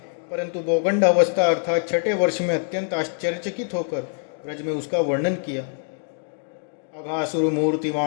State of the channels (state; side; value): silent; right; digital silence